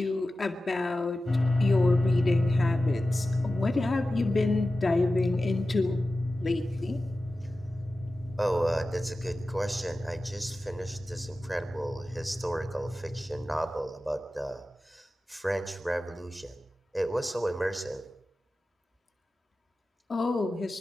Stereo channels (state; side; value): normal; both; correlation 0.94